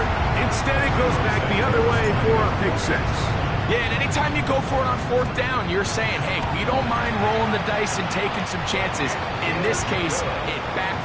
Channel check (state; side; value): identical; both; correlation 1.00